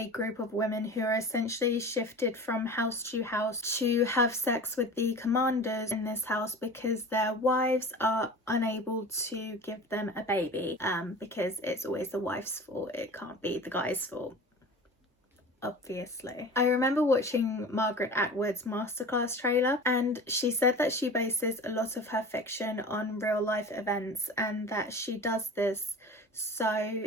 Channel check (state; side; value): normal; both; correlation 0.36